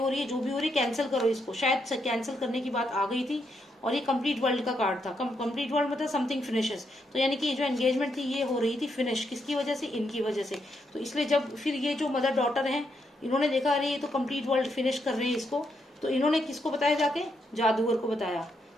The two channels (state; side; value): normal; both; correlation 0.79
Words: रही है, जो भी हो रही है, कैंसिल करो इसको। शायद कैंसिल करने की बात आ गई थी, और ये कंप्लीट वर्ल्ड का कार्ड था। कंप्लीट वर्ल्ड मतलब समथिंग फिनिशेस, तो यानी कि जो एंगेजमेंट थी ये हो रही थी फिनिश, किसकी वजह से, इनकी वजह से। तो इसलिए जब फिर ये जो मदर डॉटर हैं, इन्होंने देखा अरे ये तो कंप्लीट वर्ल्ड फिनिश कर रहे हैं इसको, तो इन्होंने किसको बताया, जाके जादूगर को बताया।